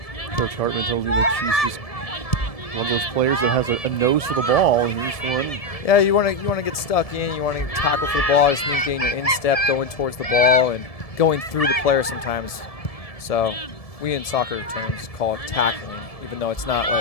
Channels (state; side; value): late; right; 1.7 ms